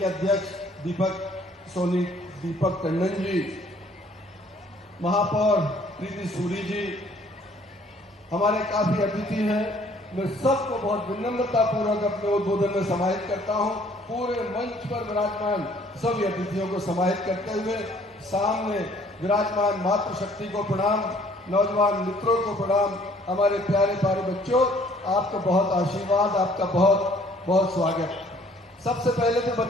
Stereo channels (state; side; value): normal; both; correlation 0.59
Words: अध्यक्ष दीपक टंडन जी, महापौर प्रीति सूरी जी, हमारे काफी अतिथि हैं। मैं सबको बहुत विनम्रता पूर्वक अपने उद्बोधन में समाहित करता हूं। पूरे मंच पर विराजमान सभी अतिथियों को समाहित करते हुए सामने विराजमान मातृशक्ति को प्रणाम, नौजवान मित्रों को प्रणाम, हमारे प्यारे प्यारे बच्चों आपको बहुत आशीर्वाद, आपका बहुत बहुत स्वागत। सबसे पहले तो